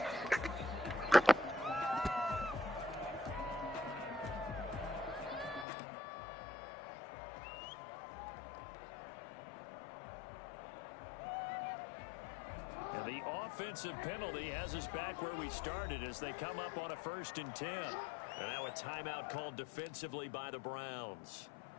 And the offensive penalty has us back where we started as they come up on a 1st and 10. And now a timeout called defensively by the Browns.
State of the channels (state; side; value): drops out; right; at 5.7 s